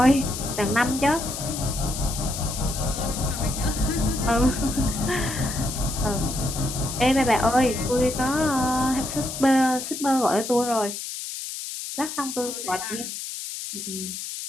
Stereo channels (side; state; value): left; noise; hiss, 7 dB below the sound